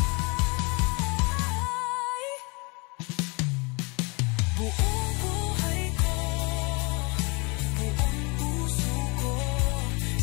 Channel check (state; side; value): quieter; right; 29.7 dB